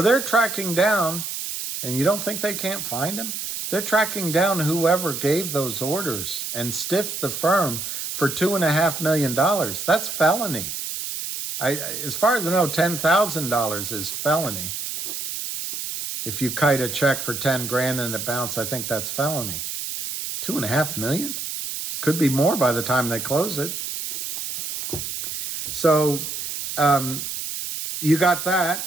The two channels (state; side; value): noise; right; hiss, 5 dB below the sound